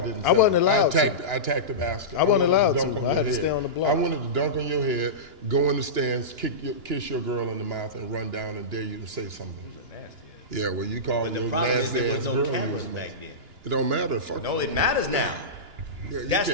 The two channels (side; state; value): left; late; 2.9 ms